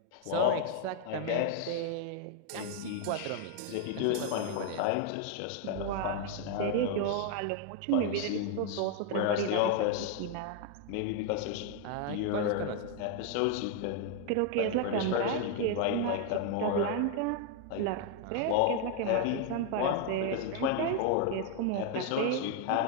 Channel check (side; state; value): both; different; correlation 0.01